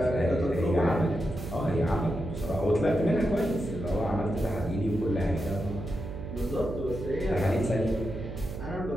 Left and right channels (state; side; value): noise; right; hum, 8 dB below the sound